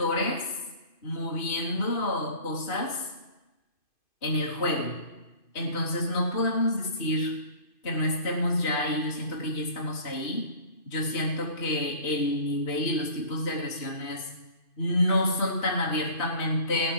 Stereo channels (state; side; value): late; right; 2.5 ms